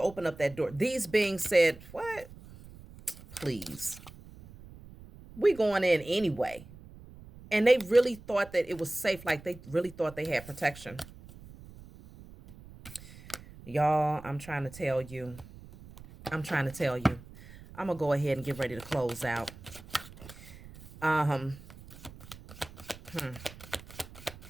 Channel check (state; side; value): noise; right; rumble, 18 dB below the sound